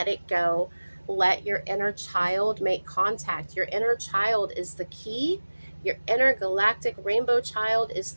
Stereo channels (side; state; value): both; inverted; correlation -1.00